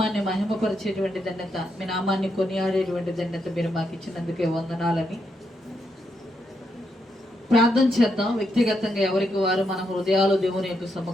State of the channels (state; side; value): normal; both; correlation 0.80